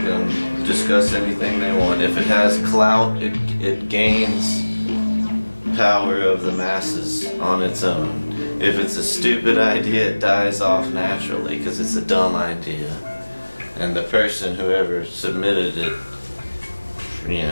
can discuss anything they want. If it has clout, it gains power of the masses on its own. If it's a stupid idea, it dies off naturally because it's a dumb idea. And the person, whoever submitted it,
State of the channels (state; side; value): inverted; both; correlation -1.00